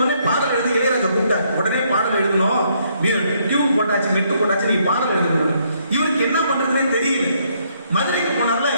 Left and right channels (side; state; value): both; inverted; correlation -0.71